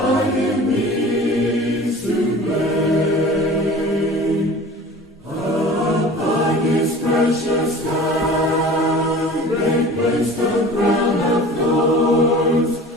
him, he's to blame. Upon his precious head they placed a crown of thorns.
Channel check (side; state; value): both; normal; correlation 0.41